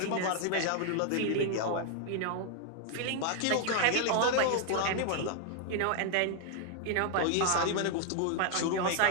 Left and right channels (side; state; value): both; different; correlation 0.00